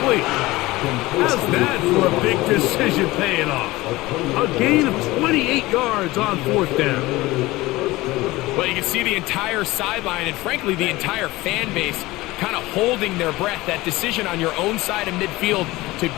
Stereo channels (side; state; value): right; quieter; 19.5 dB